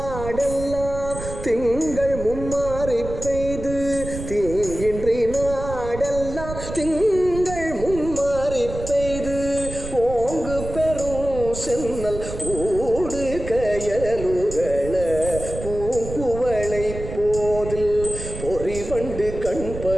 திங்கள் மும்மாறி பெய்து தீங்கின்றி நாடெல்லாம் திங்கள் மும்மாறி பெய்து ஓங்கு பெரும் சென்னல் ஊடு கயலுகள பூங்குவளை போதில் பொறிவண்டு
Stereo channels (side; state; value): right; noise; rumble, 9 dB below the sound